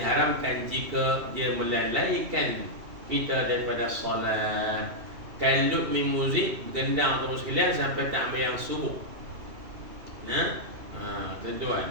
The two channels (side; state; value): left; late; 2.7 ms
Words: jika dia melalaikan kita daripada solat. Kalut min muzik, gendang atau sekalian sampai tak ambil yang subuh. Tuan,